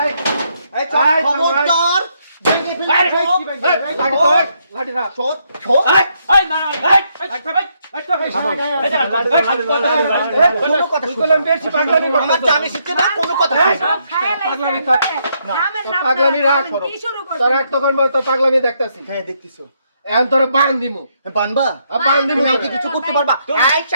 এই খবরদার ভেঙে ফেলবে লাঠি না ছোট ছোট এই না এই কোনো কথা বললাম বেশি পাগলামি আমার জানি শিখছে না কোনো কথা পাগলামি পাগলামি রাখ তোর এক তখন তো পাগলামি দেখতাছি হ্যাঁ দেখতেছো এখন তোর বান দিমু বানবা বান দিমু তুমি কি কিছু করতে পারবা এই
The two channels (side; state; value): both; inverted; correlation -0.76